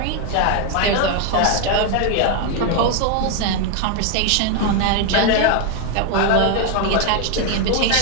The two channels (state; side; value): different; both; correlation 0.01